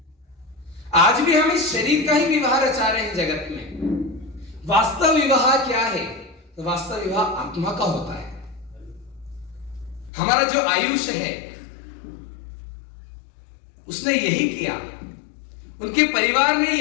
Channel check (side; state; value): right; drops out; at 10.1 s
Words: आज भी हम इस शरीर का ही विवाह रचा रहे हैं जगत में। वास्तव विवाह क्या है? तो वास्तव विवाह आत्मा का होता है। हमारा जो आयुष है उसने यही किया, उनके परिवार ने